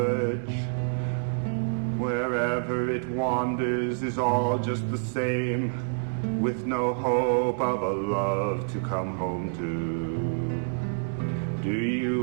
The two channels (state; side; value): silent; left; digital silence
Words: Wherever it wanders is all just the same, with no hope of a love to come home to. Do